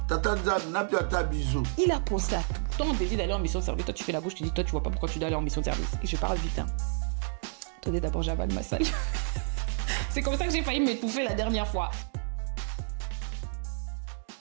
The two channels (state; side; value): silent; left; 58 dB below the other